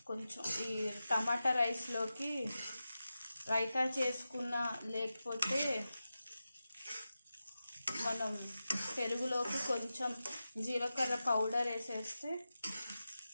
కొంచెం ఈ టమాటా రైస్లోకి రైతా చేసుకున్న, లేకపోతే మనం పెరుగులోకి కొంచెం జీలకర్ర పౌడర్ వేసేస్తే,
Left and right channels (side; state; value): both; inverted; correlation -0.92